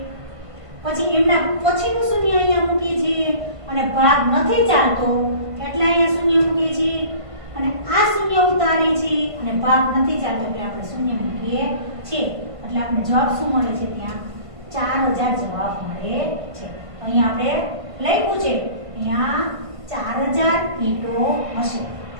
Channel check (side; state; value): left; late; 1.5 ms